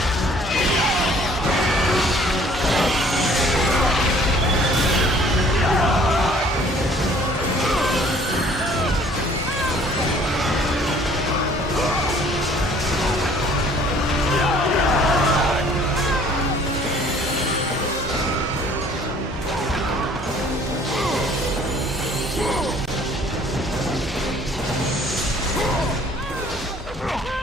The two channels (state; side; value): normal; both; correlation 0.55